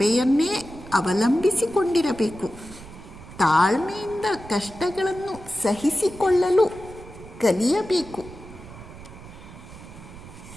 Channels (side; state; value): right; noise; rumble, 16 dB below the sound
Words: ಅವಲಂಬಿಸಿಕೊಂಡಿರಬೇಕು. ತಾಳ್ಮೆಯಿಂದ ಕಷ್ಟಗಳನ್ನು ಸಹಿಸಿಕೊಳ್ಳಲು ಕಲಿಯಬೇಕು.